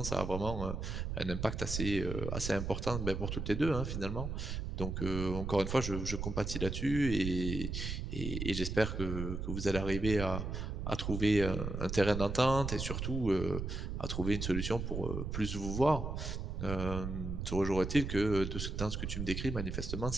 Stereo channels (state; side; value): noise; right; rumble, 4 dB below the sound